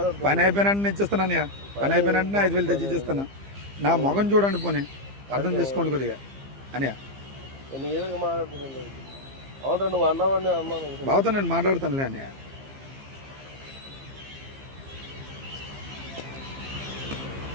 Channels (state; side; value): late; left; 15 ms